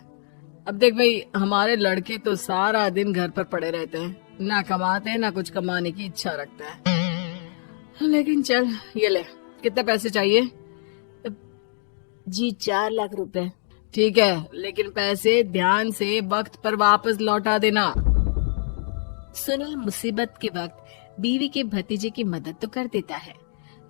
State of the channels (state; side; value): silent; right; digital silence